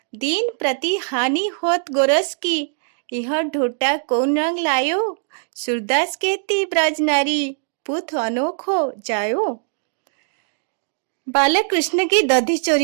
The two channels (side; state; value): left; silent; digital silence